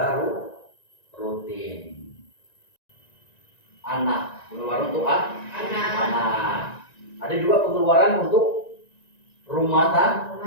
rutin. Anak, pengeluaran untuk anak. Ada juga pengeluaran untuk rumah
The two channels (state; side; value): late; right; 1.9 ms